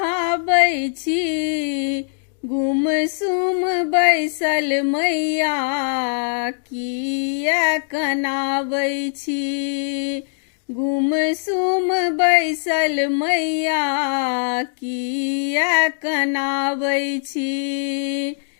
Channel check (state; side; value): silent; right; digital silence